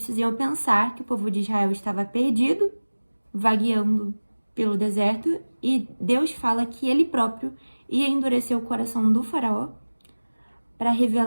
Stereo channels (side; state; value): both; inverted; correlation -1.00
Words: iam pensar que o povo de Israel estava perdido, vagueando pelo deserto, e Deus fala que ele próprio ia endurecer o coração do faraó para